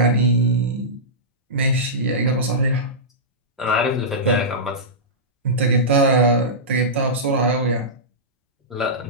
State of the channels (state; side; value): normal; both; correlation -0.15